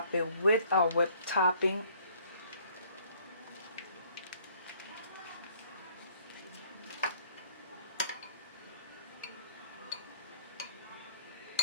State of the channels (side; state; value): both; inverted; correlation -0.59